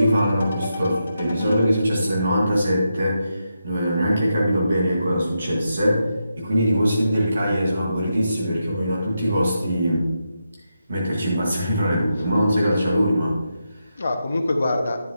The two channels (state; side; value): inverted; both; correlation -0.85